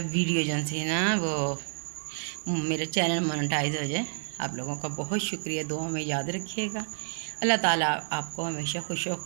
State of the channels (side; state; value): left; silent; digital silence